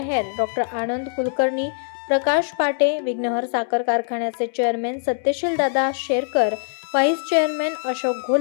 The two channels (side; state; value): right; silent; digital silence